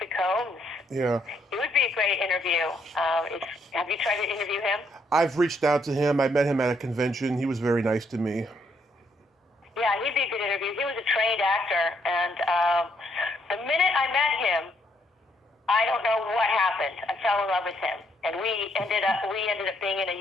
Combs. Yeah. It would be a great interview. Have you tried to interview him? I've reached out to him. I met him at a convention. He was very nice to me. Yeah, he'd be a good interview. He was a trained actor, and the minute I met him, I don't know what happened. I fell in love with him, and we ended up being in a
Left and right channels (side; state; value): both; normal; correlation 0.72